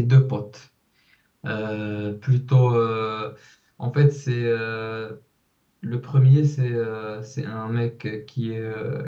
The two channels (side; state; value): both; identical; correlation 1.00